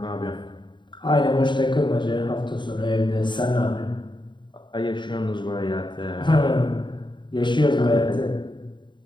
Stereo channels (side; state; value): right; late; 0.23 ms